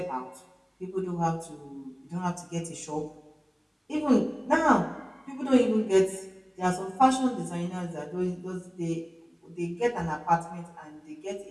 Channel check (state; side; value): identical; both; correlation 1.00